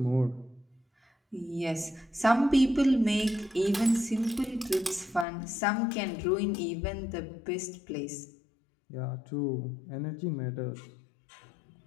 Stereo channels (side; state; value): right; drops out; at 5.2 s